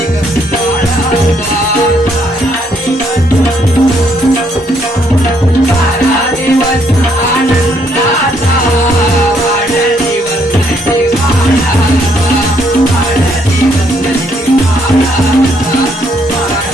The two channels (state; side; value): normal; both; correlation 0.70